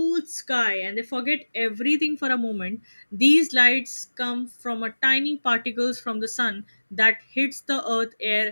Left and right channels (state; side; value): inverted; both; correlation -1.00